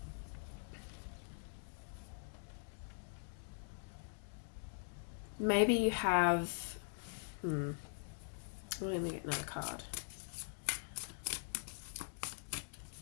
maybe you have, let me get another card.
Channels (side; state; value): right; silent; digital silence